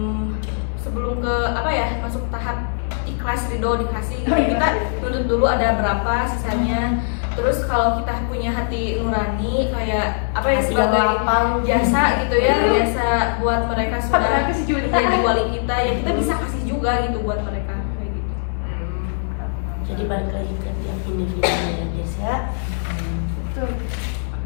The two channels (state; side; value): silent; right; 65 dB below the other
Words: ke apa ya masuk tahap ikhlas ridho dikasih gitu. Kita tuntut dulu ada berapa sisanya. Terus kalau kita punya hati nurani kayak apa ya Hati sebagai yang lapang. jasa gitu ya, jasa buat mereka sudah 400 juta. menjadi wali kita ya, kita bisa kasih juga gitu buat mereka kayak gitu. Jadi balik lagi ke tiap individunya ya guys ya. Betul.